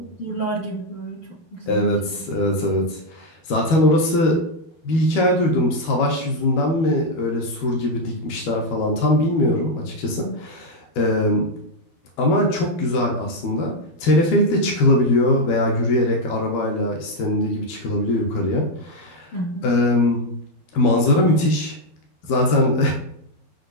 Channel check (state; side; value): late; right; 12 ms